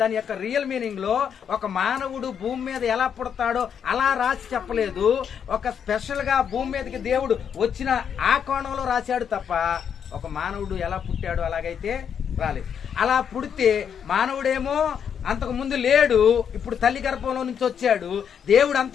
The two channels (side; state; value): right; quieter; 7.8 dB